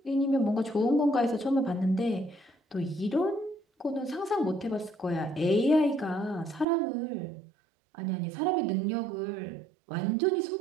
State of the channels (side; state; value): left; drops out; at 6.7 s